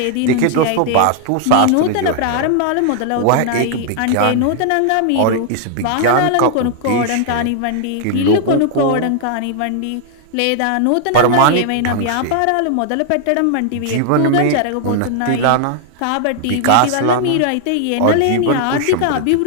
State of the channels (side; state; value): both; different; correlation 0.00